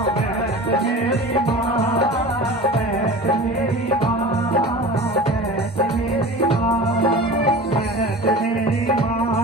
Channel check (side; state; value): both; normal; correlation 0.36